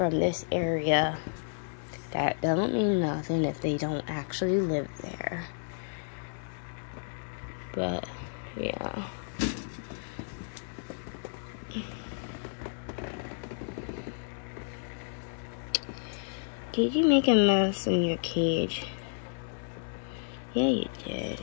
this area, that doesn't mean nothing if they don't actually live there. But yeah, did you make a mess in your cage? Yeah, you did.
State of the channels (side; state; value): right; silent; digital silence